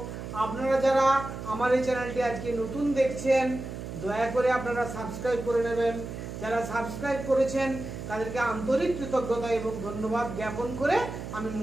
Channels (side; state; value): right; noise; hum, 8 dB below the sound